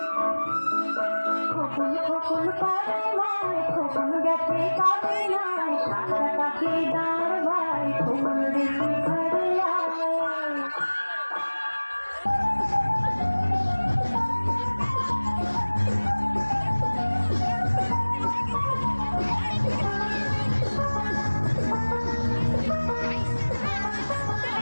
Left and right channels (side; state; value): both; inverted; correlation -1.00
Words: খোকন খোকন করে ভাই খোকন গেছে কাবে নাই সাদা পাখি দাঁড় ভাই খোকন দেখি ঘরে আয়।